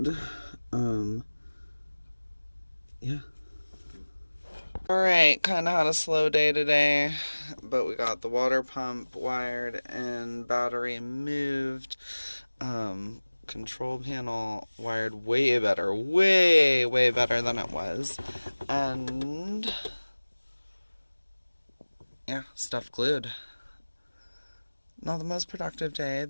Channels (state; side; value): inverted; both; correlation -1.00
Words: yeah. Alright, kind of had a slow day today, but we got the water pump wired and battery moved. Control panel wired way better, way better than it was. And yeah, stuff glued. Not the most productive day,